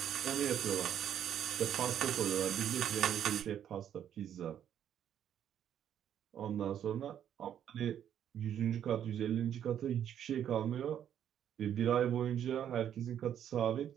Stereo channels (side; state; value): left; quieter; 9.8 dB